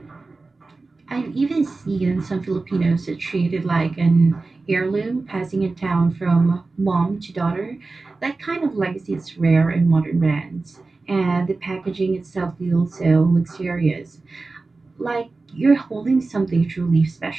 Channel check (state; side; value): quieter; left; 3.6 dB